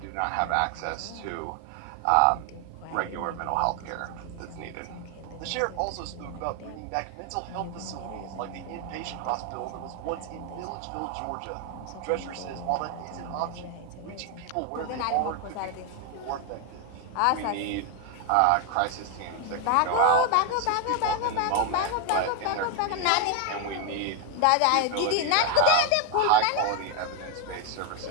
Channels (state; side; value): different; both; correlation 0.01